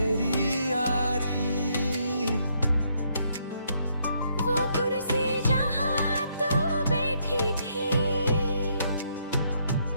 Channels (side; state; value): both; inverted; correlation -0.73